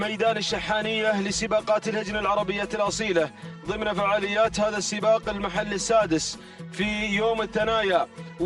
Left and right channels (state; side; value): identical; both; correlation 1.00